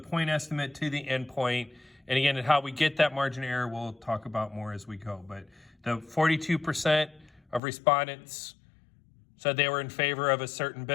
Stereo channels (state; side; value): drops out; right; at 7.6 s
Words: estimate to the endpoint. And again, how we get that margin of error, we'll talk about more as we go. But the 42% of respondents said they were in favor of a certain